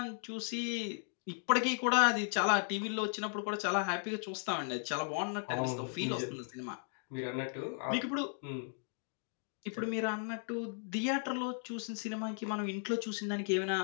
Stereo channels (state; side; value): silent; right; 54 dB below the other